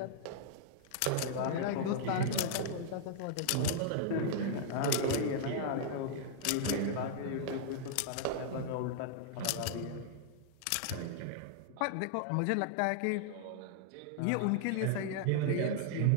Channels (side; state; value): both; different; correlation -0.01